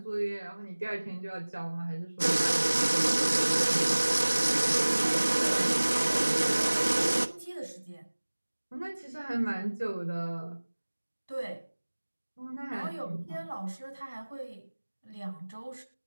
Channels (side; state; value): both; inverted; correlation -1.00